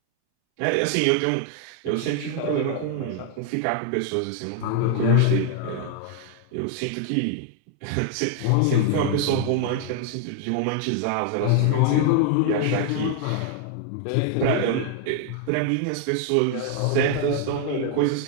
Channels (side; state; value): both; different; correlation 0.00